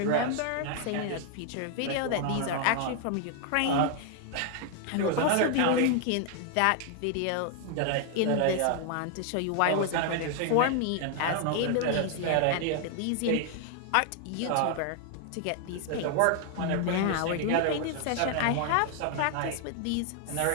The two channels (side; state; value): both; different; correlation 0.00